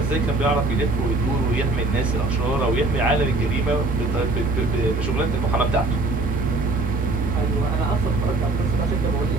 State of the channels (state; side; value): quieter; left; 3.1 dB